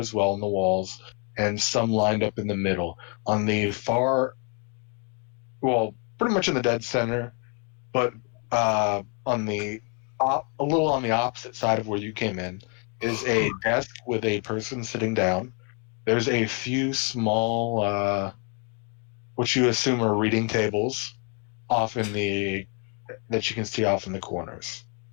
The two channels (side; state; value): right; quieter; 37.6 dB